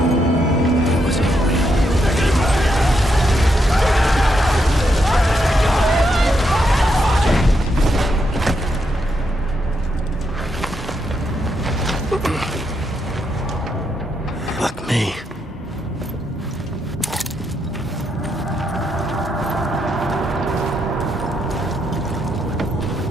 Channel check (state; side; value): normal; both; correlation 0.80